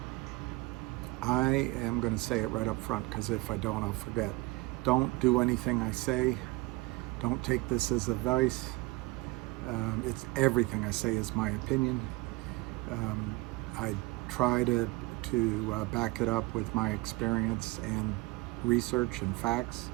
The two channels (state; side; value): quieter; left; 23.0 dB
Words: I am going to say it right up front because if I don't, I'll forget. Don't do anything I say. Don't take this as advice. It's everything I say is my opinion. I try to back it up with my experience and research and facts,